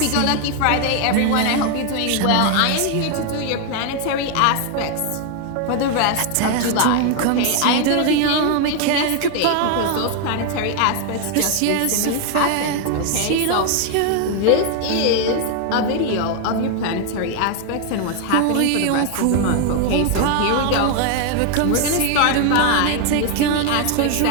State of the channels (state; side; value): different; both; correlation 0.01